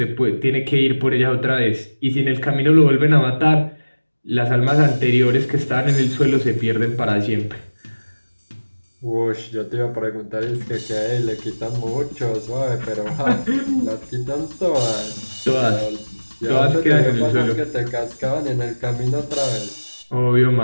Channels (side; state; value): both; inverted; correlation -1.00